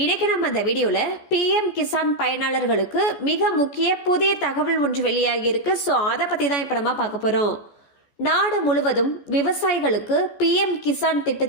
இன்னைக்கு நம்ம இந்த வீடியோல பிஎம் கிசான் பயனாளர்களுக்கு மிக முக்கிய புதிய தகவல் ஒன்று வெளியாகி இருக்கு. ஸோ அதை பத்தி தான் இப்ப நம்ம பார்க்க போறோம். நாடு முழுவதும் விவசாயிகளுக்கு பிஎம் கிசான்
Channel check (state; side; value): late; right; 14 ms